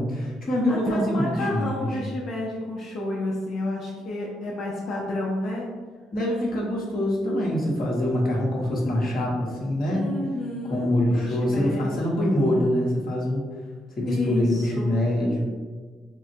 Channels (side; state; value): both; normal; correlation 0.81